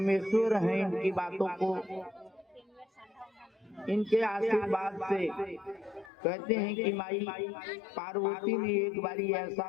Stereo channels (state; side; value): drops out; right; at 6.1 s